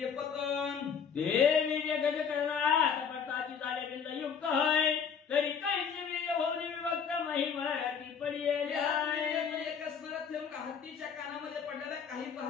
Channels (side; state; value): right; quieter; 6.8 dB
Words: पतन ते वीर्य गज करणार पटाची झाले बिंद युक्त आहे तरी काहीचे वीर्य होऊन विभक्त महिमाती पडलेले एक असणारा थेंब हत्तीच्या कानामध्ये पडलेला, काही